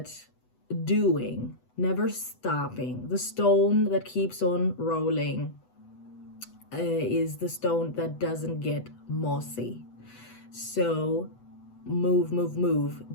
doing, never stopping, the stone that keeps on rolling is the stone that doesn't get mossy. So move, move, move,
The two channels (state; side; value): late; right; 8.0 ms